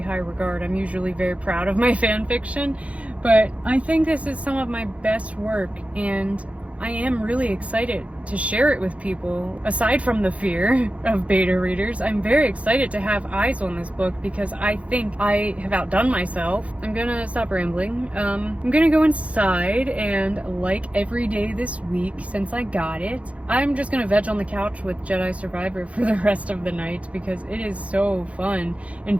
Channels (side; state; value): left; late; 0.064 ms